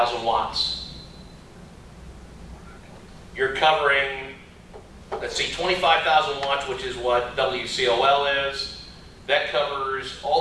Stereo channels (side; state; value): both; identical; correlation 1.00